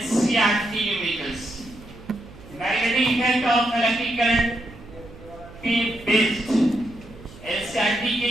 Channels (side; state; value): right; noise; hum, 19 dB below the sound